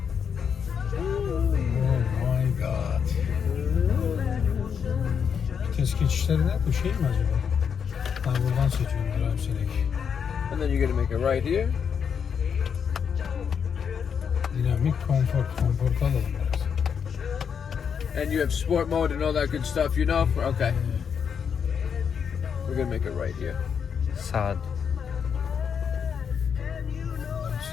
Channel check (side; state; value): right; quieter; 7.0 dB